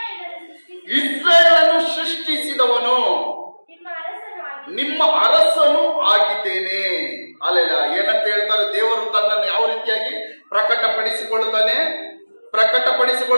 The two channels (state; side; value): inverted; both; correlation -1.00